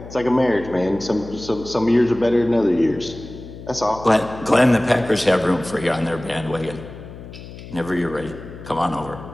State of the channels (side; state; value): left; noise; hum, 14 dB below the sound